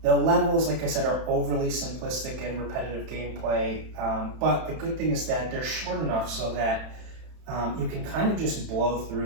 The levels, like I said, are overly simplistic and repetitive gameplay, but the good thing is that they're short enough so that you can kind of just blow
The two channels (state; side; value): late; left; 31 ms